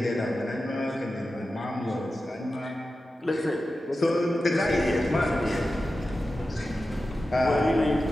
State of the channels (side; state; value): both; normal; correlation 0.93